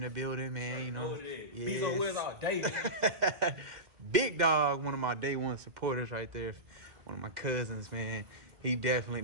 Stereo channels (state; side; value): late; left; 2.1 ms